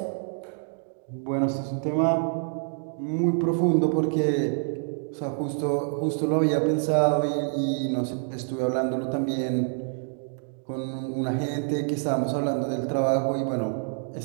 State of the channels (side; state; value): left; silent; 60 dB below the other